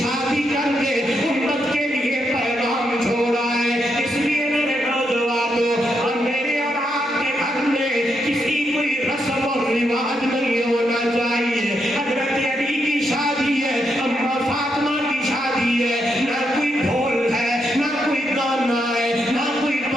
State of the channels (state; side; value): normal; both; correlation 0.81